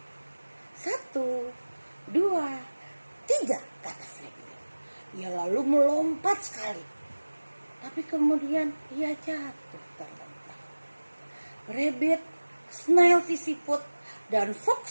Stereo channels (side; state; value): both; inverted; correlation -1.00